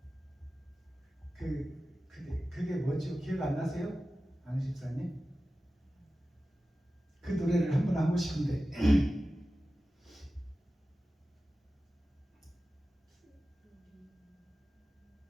그게 뭐죠? 기억 안 나세요? 안 집사님? 그 노래를 한번 하고 싶은데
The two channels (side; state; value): both; normal; correlation 0.95